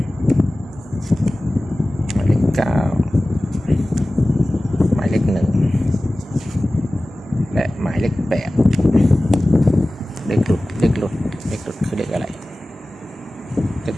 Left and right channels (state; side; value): normal; both; correlation 0.97